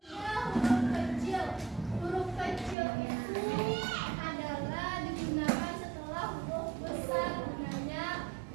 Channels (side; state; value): left; drops out; at 2.8 s